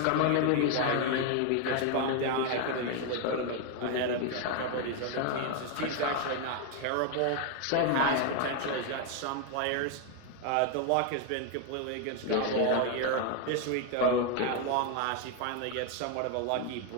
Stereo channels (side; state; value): both; different; correlation 0.01